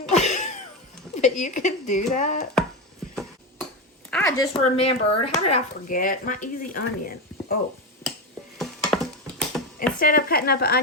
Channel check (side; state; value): both; normal; correlation 0.15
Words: But you can do that. I just remembered, how did I forget? My easy onion. Oh. Instead of cutting up an